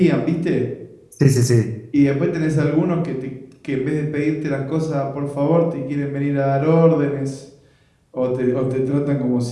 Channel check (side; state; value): both; identical; correlation 1.00